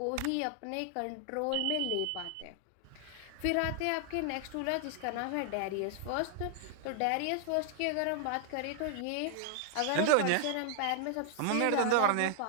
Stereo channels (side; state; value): both; different; correlation 0.00